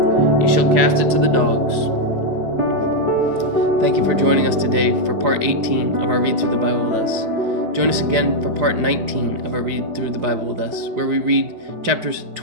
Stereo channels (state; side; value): late; left; 4.8 ms